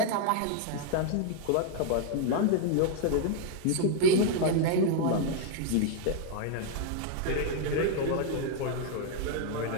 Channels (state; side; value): different; both; correlation 0.00